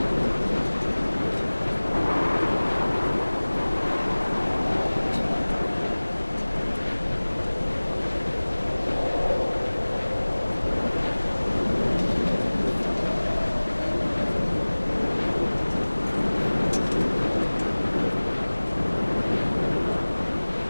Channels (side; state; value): both; inverted; correlation -1.00